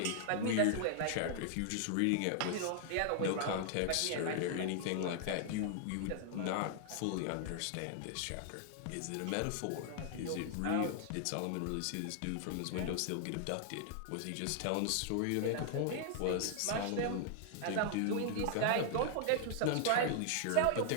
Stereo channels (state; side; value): different; both; correlation 0.00